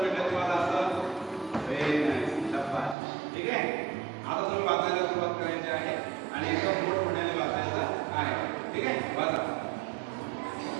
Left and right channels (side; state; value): left; drops out; at 3.0 s